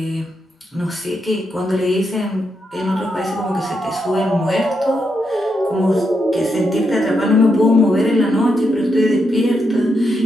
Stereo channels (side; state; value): both; normal; correlation 0.82